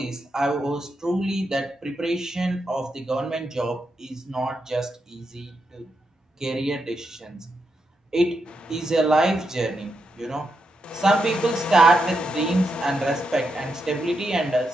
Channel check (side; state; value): both; normal; correlation 0.83